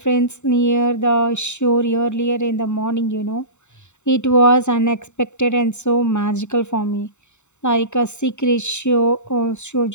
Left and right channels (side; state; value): right; late; 0.83 ms